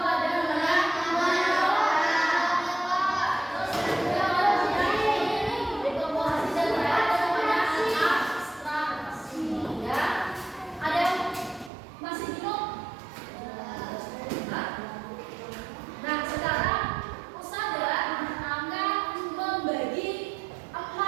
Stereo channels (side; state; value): left; drops out; at 11.7 s